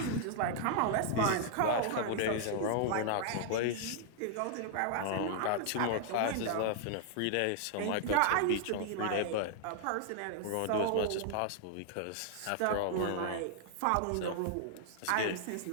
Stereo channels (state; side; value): different; both; correlation -0.01